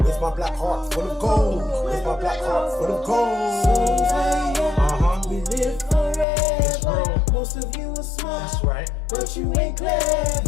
my black heart full of gold. With my black heart full of gold. We live forever. Most of you are smart, That's right. but you ain't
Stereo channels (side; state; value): right; drops out; at 6.2 s